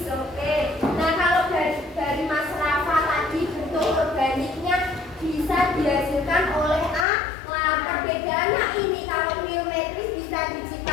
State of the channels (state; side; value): drops out; right; at 7.1 s